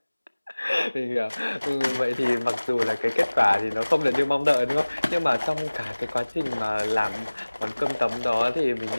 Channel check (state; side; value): inverted; both; correlation -1.00